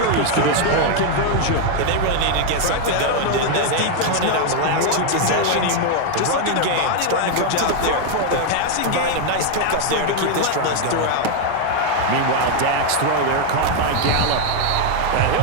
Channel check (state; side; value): different; both; correlation 0.01